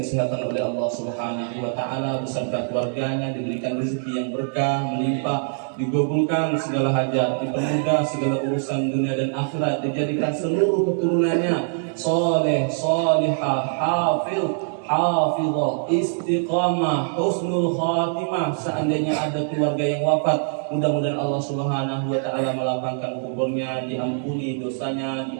oleh Allah Subhanahu wa taala beserta keluarganya, diberikan rezeki yang berkah, melimpah, digabulkan segala hajat, dipermudah segala urusan dunia dan akhirat, dijadikan seluruh keturunannya saleh, salihah, hafiz, hafizah, istiqamah, husnul khatimah. Seandainya ada keluarga yang wafat, mudah-mudahan Allah Subhanahu wa taala melapangkan kuburnya, diampuni dosanya,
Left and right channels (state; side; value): silent; left; digital silence